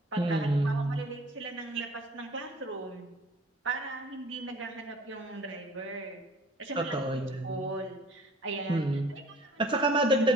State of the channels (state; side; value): normal; both; correlation 0.50